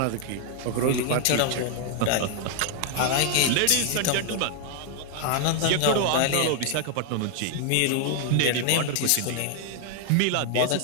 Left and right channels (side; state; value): both; different; correlation 0.00